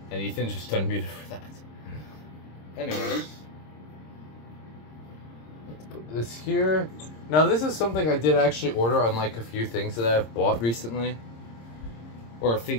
And Ethan's just unmuted for that. Anyways, let's put this here. Now, this is something I did actually order on like a few things that I've bought recently. Or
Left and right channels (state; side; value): late; right; 26 ms